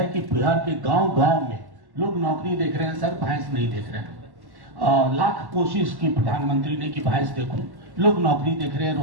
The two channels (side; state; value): left; late; 1.1 ms